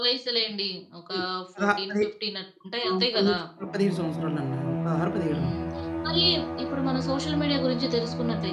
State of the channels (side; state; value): both; identical; correlation 1.00